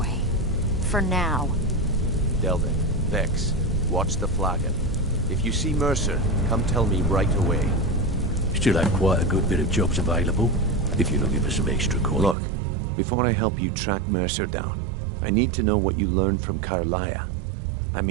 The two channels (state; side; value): drops out; left; at 12.4 s